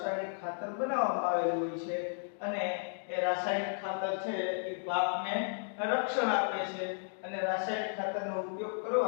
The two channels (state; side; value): silent; right; digital silence